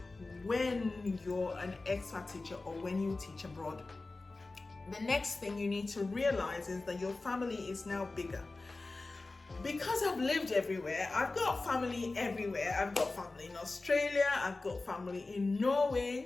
when you're an expat teacher or when you teach abroad. The next thing you need to realize is that your family is now bigger. Because I've lived everywhere, I've got family everywhere. I've got family in Australia, I've got family in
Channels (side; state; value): right; quieter; 3.4 dB